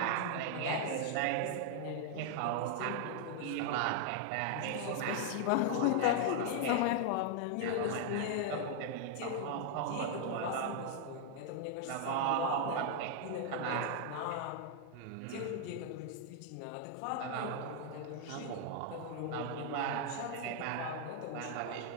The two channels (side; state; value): both; different; correlation 0.00